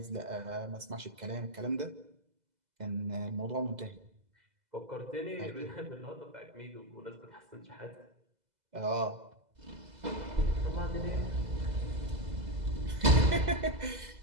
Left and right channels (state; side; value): late; left; 2.0 ms